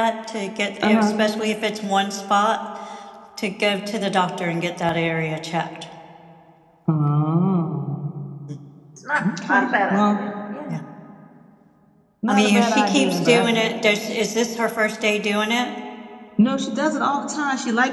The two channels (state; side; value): identical; both; correlation 1.00